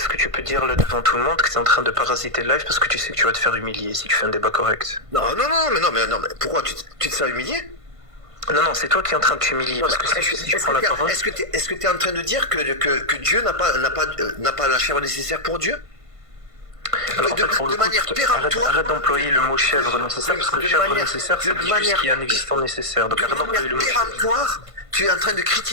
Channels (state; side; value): late; left; 1.5 ms